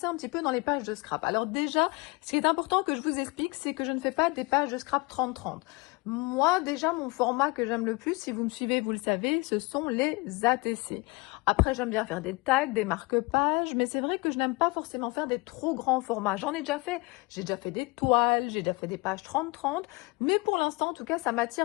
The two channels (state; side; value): quieter; right; 26.1 dB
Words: un petit peu dans les pages de scrap. Alors déjà, ce qui est important que je vous explique, c'est que je ne fais pas des pages de scrap 30-30. Moi, déjà, mon format que j'aime le plus, si vous me suivez, vous le savez, ce sont les ATC. Après, j'aime bien faire des tags, des marque-pages, mais c'est vrai que je n'aime pas forcément faire des trop grands formats. J'en ai déjà fait. J'ai déjà fait des toiles, j'ai déjà fait des pages 30-30, mais pour l'instant, en tout cas, ça